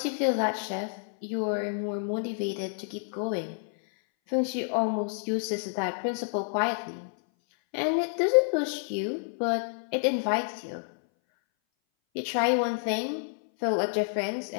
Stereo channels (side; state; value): right; silent; 59 dB below the other